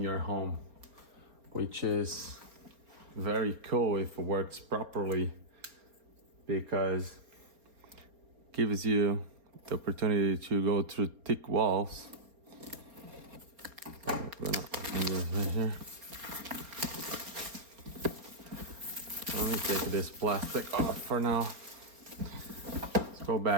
home, which is very cool if it works properly, because it gives you the opportunity to go through thick walls. I'm gonna open this right here. Let me take this plastic off for now. Let's go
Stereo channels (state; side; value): late; left; 4.3 ms